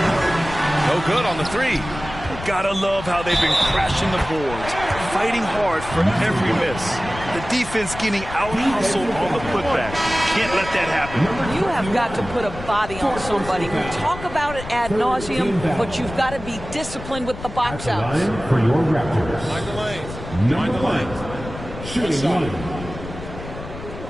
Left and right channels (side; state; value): left; noise; rumble, 11 dB below the sound